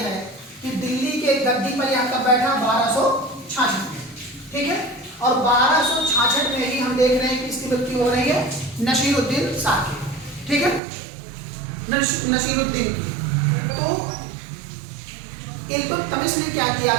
कि दिल्ली के गद्दी पर यहाँ कब बैठा? 1266 में। ठीक है, और 1266 में ही हम देख रहे हैं कि इसकी मृत्यु हो रही है नसीरुद्दीन शाह की। ठीक है, नसीरुद्दीन की। तो इल्तुतमिश ने क्या किया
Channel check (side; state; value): left; drops out; at 10.8 s